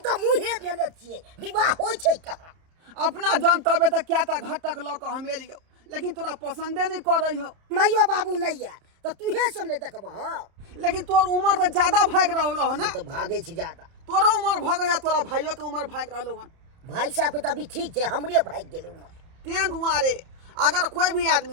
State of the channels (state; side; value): late; left; 30 ms